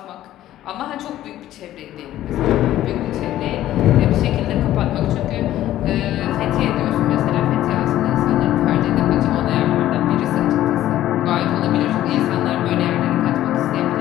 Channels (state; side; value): quieter; right; 13.5 dB